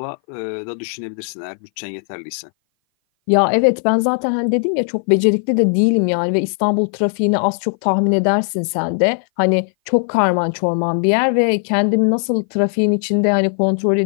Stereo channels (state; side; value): silent; right; 58 dB below the other